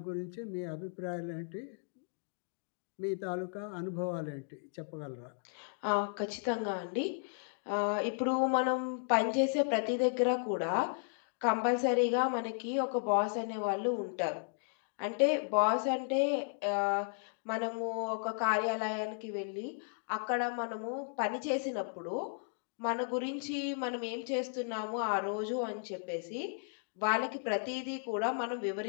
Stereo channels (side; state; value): right; silent; digital silence